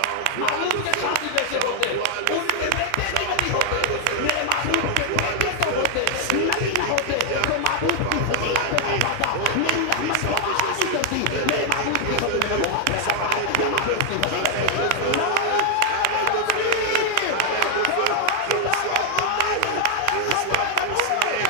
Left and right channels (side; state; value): both; different; correlation 0.00